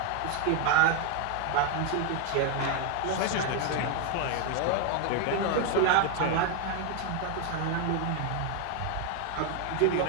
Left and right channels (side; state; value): both; different; correlation 0.00